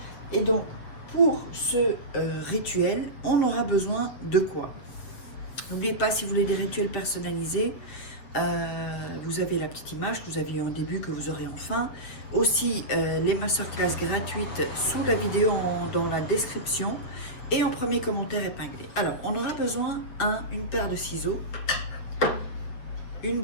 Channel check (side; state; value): right; late; 7.8 ms